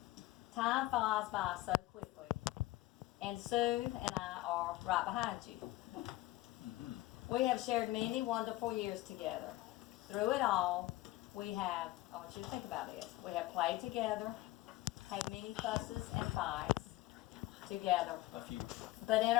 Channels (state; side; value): quieter; right; 17.6 dB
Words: Time flies by so quickly. And Sue and I are right behind you. We have shared many wonderful years together. Through it all, we have, I want you to think about this, we have played together, had many fusses and fights together, A few. but in